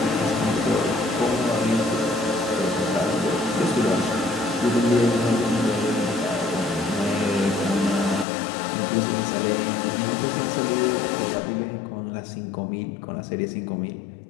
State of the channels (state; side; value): drops out; right; at 8.2 s